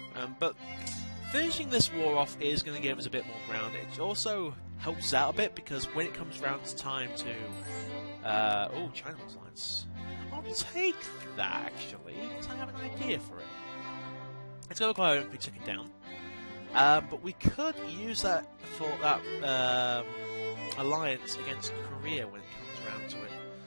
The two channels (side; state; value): both; inverted; correlation -1.00